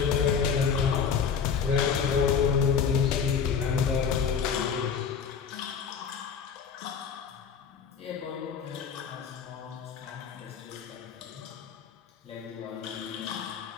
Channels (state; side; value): quieter; right; 6.7 dB